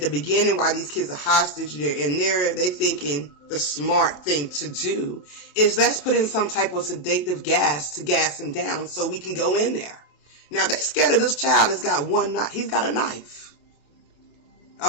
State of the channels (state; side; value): late; right; 28 ms